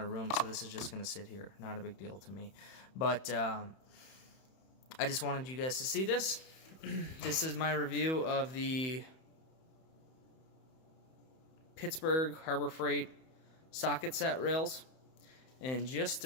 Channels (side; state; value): right; late; 31 ms